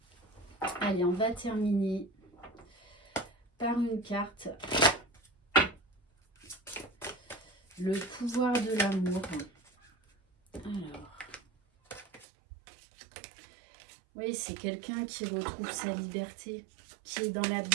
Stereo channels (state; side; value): drops out; left; at 12.2 s